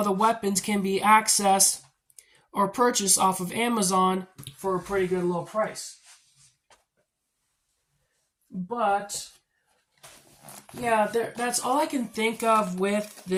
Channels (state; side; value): identical; both; correlation 1.00